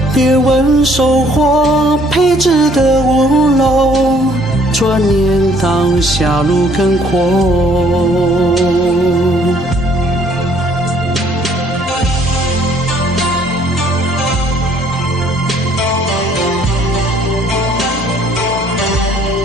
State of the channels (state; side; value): normal; both; correlation 0.61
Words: 别问收获配置的屋楼，转念当下路更阔。